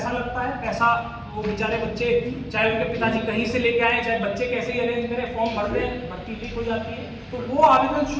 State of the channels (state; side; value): identical; both; correlation 1.00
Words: लगता है। पैसा वो बेचारे बच्चे, चाहे उनके पिताजी कहीं से लेके आए, चाहे बच्चे कैसे ही अरेंज करें, फॉर्म भर दें, भर्ती लीक हो जाती है, तो वो आवेदन